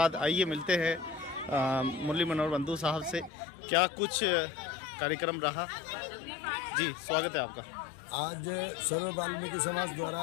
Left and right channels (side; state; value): right; drops out; at 3.3 s